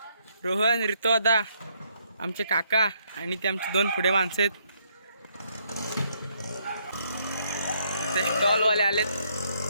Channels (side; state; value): both; inverted; correlation -0.72